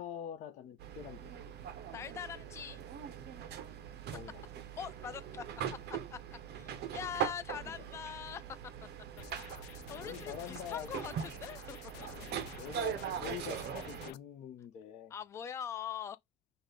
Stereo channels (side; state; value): both; normal; correlation 0.12